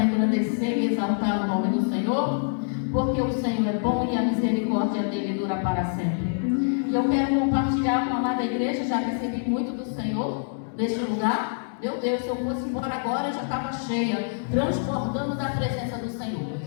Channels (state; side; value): silent; right; digital silence